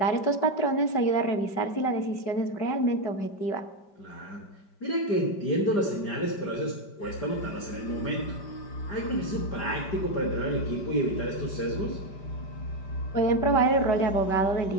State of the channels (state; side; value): late; right; 5.1 ms